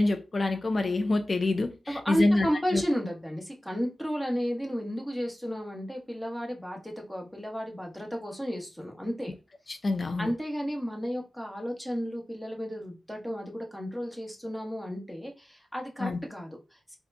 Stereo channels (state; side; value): normal; both; correlation 0.96